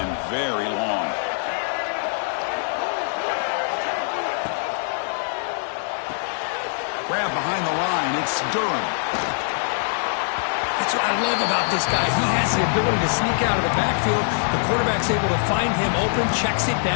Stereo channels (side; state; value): right; silent; 63 dB below the other